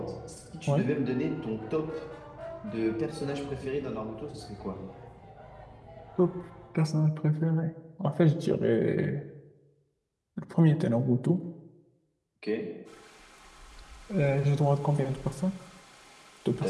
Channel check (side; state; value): both; identical; correlation 1.00